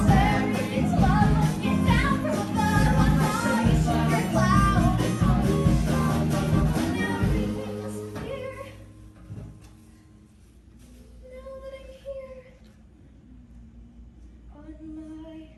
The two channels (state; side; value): identical; both; correlation 1.00